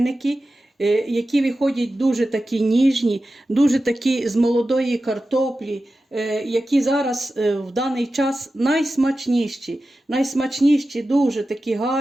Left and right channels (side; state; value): both; normal; correlation 0.93